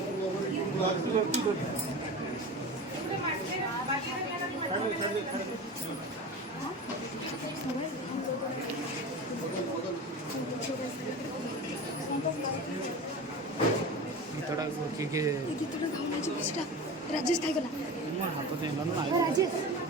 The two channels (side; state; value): both; normal; correlation 0.30